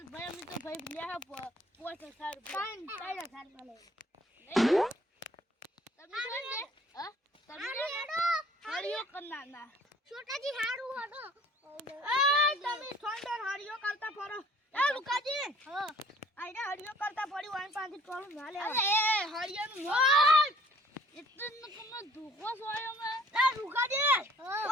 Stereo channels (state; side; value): normal; both; correlation 0.56